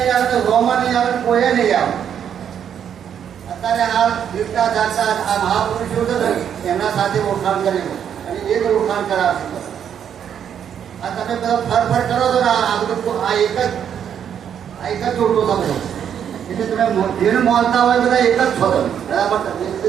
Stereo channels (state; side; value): quieter; left; 8.7 dB